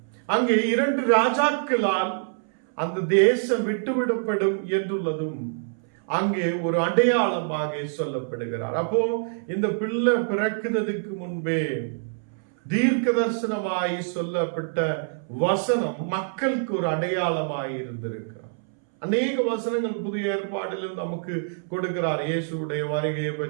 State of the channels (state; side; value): silent; left; 61 dB below the other